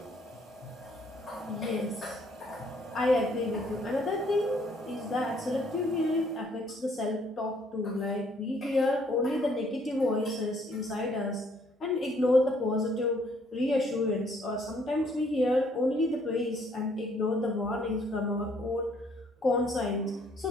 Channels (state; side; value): normal; both; correlation 0.65